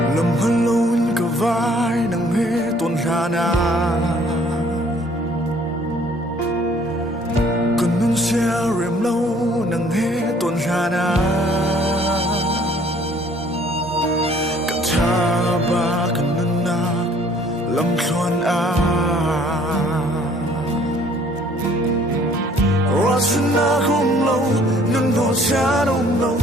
Lâm hân lâu cả vai nắng hê tuần hà na cần nâng xe rèm lâu nắng hê tuần hà na cả cha ba cần nâng nạc lâm xoan a Rasana không lâu nâng đỏ cha đông lâu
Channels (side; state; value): both; normal; correlation 0.58